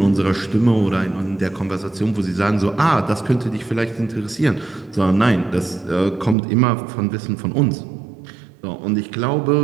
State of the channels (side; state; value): left; drops out; at 6.4 s